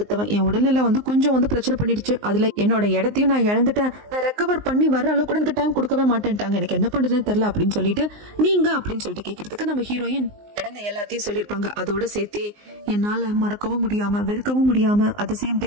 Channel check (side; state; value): left; late; 19 ms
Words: என் உடல்நிலை வந்து கொஞ்சம் வந்து பிரச்சனை பண்ணிடுச்சு, அதுல என்னோட இடத்தையும் நான் இழந்துட்டேன், நான் ரெக்கவர் பண்ணி வர அளவுக்கு கூட எனக்கு டைம் கொடுக்கவே மாட்டேன்ட்டாங்க, எனக்கு என்ன பண்றதுன்னு தெரியல அப்படின்னு சொல்லிட்டு நீங்க அப்படின்னு சொல்லிட்டு கேட்கறதுக்கு நம்ம ஹீரோயின் நடந்த எல்லாத்தையும் சொல்லிருப்பாங்க. அதோட சேர்த்து என்னால மறக்கவும் முடியாம வெறுக்கவும் முடியாம அட் சேம்